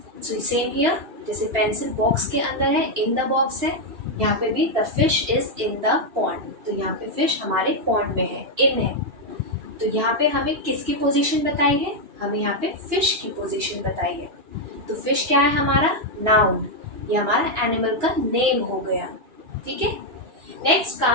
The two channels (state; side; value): late; left; 2.9 ms